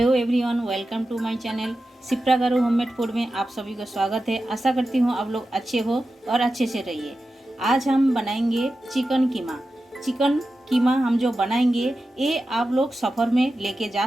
everyone, welcome to my channel Shipra garu homemade food में आप सभी का स्वागत है। आशा करती हूँ आप लोग अच्छे हो और अच्छे से रहिए। आज हम बनाएंगे चिकन कीमा। चिकन कीमा हम जो बनाएंगे ये आप लोग सफ़र में लेके जा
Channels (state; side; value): normal; both; correlation 0.92